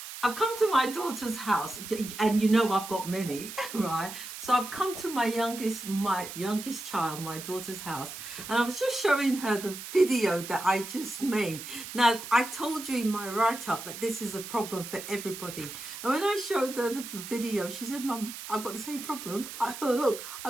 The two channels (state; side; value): noise; right; hiss, 10 dB below the sound